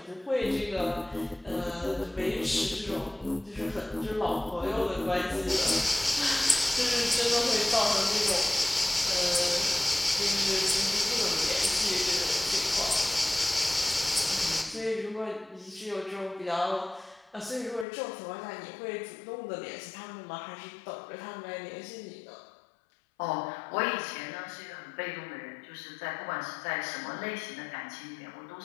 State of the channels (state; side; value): drops out; right; at 17.9 s